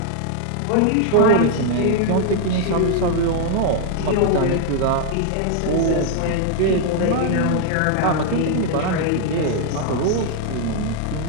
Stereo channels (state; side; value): different; both; correlation 0.00